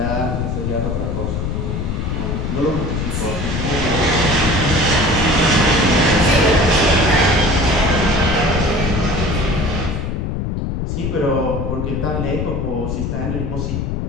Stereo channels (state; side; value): noise; left; rumble, 2 dB below the sound